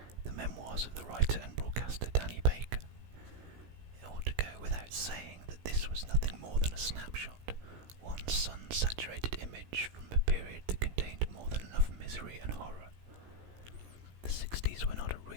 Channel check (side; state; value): left; late; 17 ms